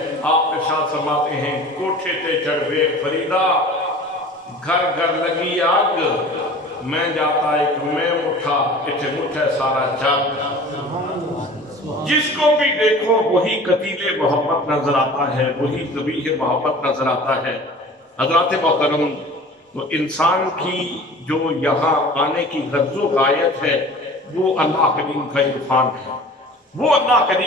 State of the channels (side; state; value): both; normal; correlation 0.42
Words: آپ ارشاد فرماتے ہیں کوٹھے تے چڑھوے فریدا، گھر گھر لگی آگ، میں جاتا ایک میں مٹھا، اتھے مٹھے سارا جگ۔ جس کو بھی دیکھو وہی قتیل محبت نظر آتا ہے، وہی ذبیح محبت نظر آتا ہے۔ حضرات محترم، تو انسان کی جو یہاں آنے کی غرض و غایت ہے وہ اللہ کریم کا عرفان ہے، وہ اللہ